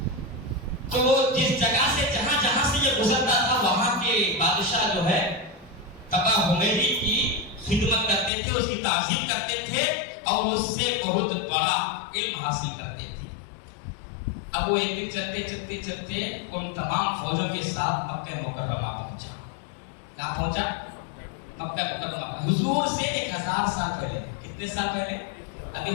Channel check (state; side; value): drops out; right; at 8.3 s